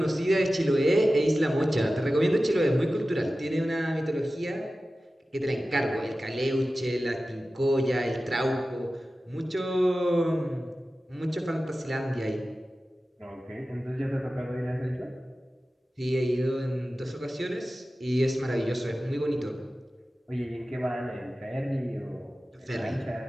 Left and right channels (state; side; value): normal; both; correlation 0.95